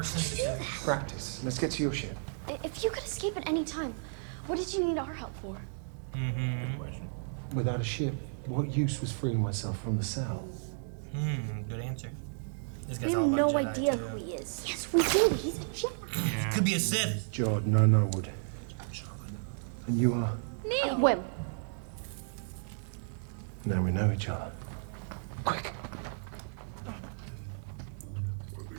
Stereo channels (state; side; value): silent; left; digital silence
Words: sensitive. Practice. Let's get to your ship. If you could escape at any time, what did you need our help for? Good question. Without a ship, what use was freeing myself from the cell? Good answer. This We guy's have all about no Jedi, idea too. who he is. Yes, we do. He's a Jedi. Yeah. Could be a Sith. Jordan, I know would. And you are? Neil. Whim. Now we know each other. Quick.